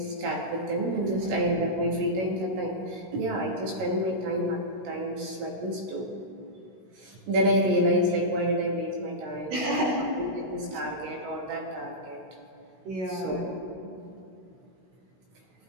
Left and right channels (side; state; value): left; late; 17 ms